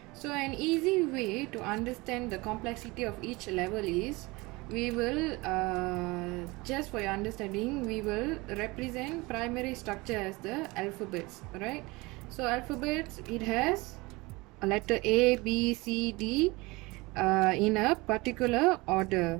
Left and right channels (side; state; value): left; quieter; 23.5 dB